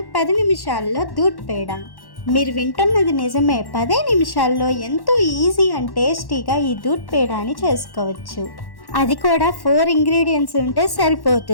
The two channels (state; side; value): late; right; 1.1 ms